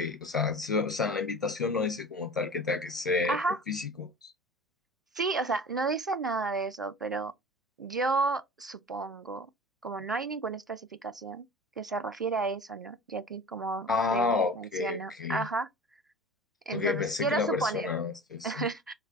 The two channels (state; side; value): normal; both; correlation 0.38